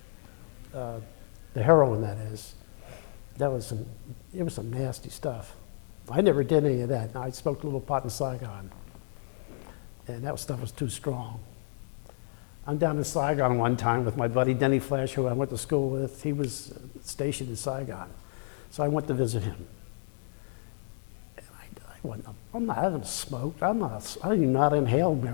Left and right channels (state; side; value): silent; right; 57 dB below the other